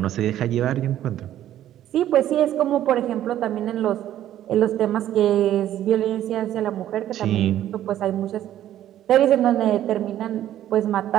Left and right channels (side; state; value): left; quieter; 12.1 dB